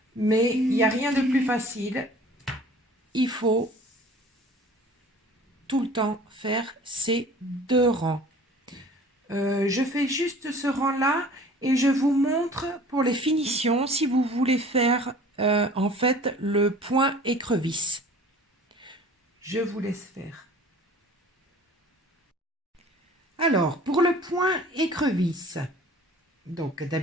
Mais il n'y a rien de plus facile. Il faut tout le temps faire ces 2 rangs. Je fais juste ce rang-là et je vous montre pour les finitions si vous voulez faire en fait le point écrevisse. Je vous laisse faire. Alors, pour le point écrevisse, donc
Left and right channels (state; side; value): normal; both; correlation 0.47